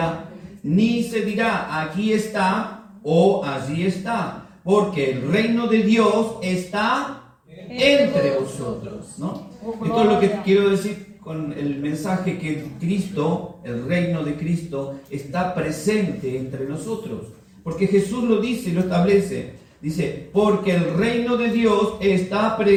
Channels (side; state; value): both; identical; correlation 1.00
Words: ni se dirá, aquí está o allí está, porque el reino de Dios está entre vosotros, ¿no? Esto es lo que quiero decir con el mensaje, que Cristo, el reino de Cristo, está presente entre nosotros. Porque Jesús lo dice y lo establece. Dice, porque el reino de Dios está